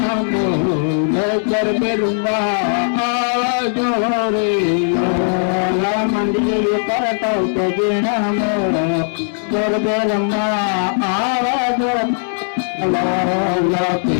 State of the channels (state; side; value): silent; right; digital silence